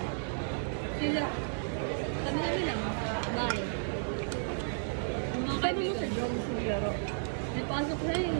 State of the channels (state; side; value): silent; left; digital silence